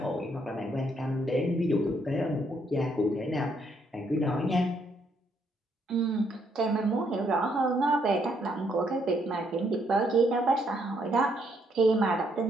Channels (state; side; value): normal; both; correlation 0.72